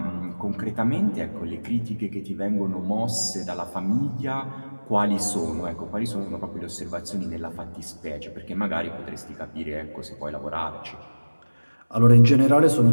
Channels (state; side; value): inverted; both; correlation -1.00